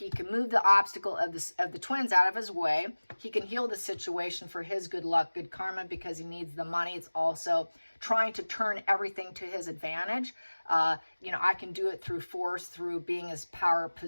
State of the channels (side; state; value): both; inverted; correlation -1.00